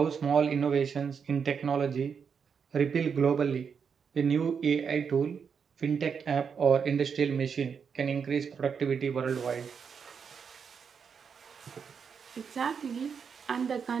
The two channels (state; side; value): quieter; left; 6.5 dB